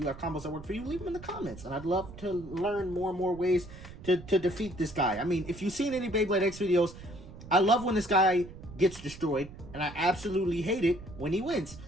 have combos that work for you, leave them in the comments, and I'd love to learn more and more ways to defeat this guy. I mean, if you've seen any Beyblade X videos, I love when this guy gets destroyed, and I absolutely hate it when he wins.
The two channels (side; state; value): right; noise; rumble, 15 dB below the sound